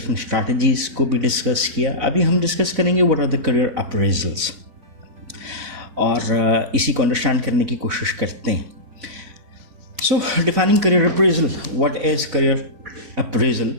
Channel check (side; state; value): left; late; 4.0 ms